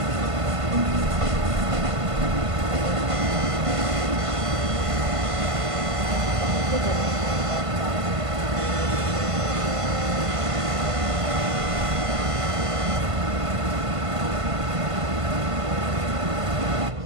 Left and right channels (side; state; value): left; late; 1.5 ms